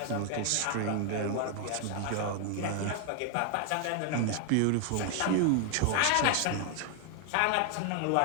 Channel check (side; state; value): both; different; correlation 0.00